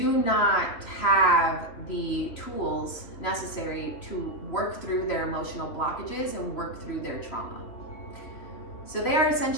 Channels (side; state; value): right; late; 3.3 ms